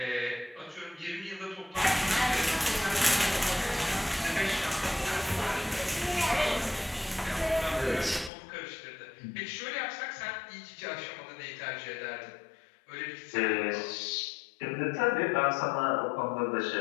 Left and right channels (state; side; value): drops out; right; at 8.3 s